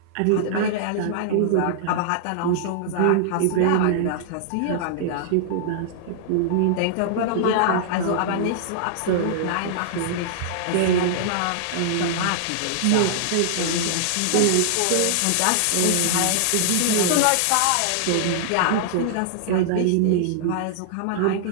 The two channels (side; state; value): both; different; correlation -0.01